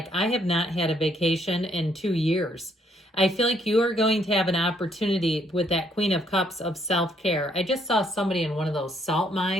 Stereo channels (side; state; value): both; normal; correlation 0.69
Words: I have not had a vacation in 2 years, I feel like you are going to have an opportunity with that Queen of Cups of self-care. I just saw somebody in one of those salt